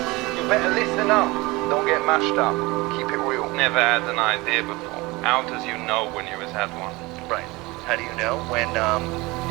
You better listen up. Don't get mashed up. Keep it real. Never had an idea before. How does you know when you has had one? Right. How do you know? When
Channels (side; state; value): left; quieter; 22.6 dB